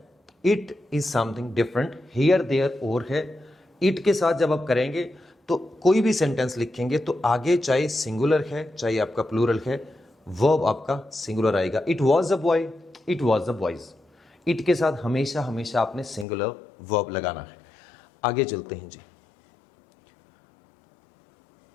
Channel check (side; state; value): right; drops out; at 16.2 s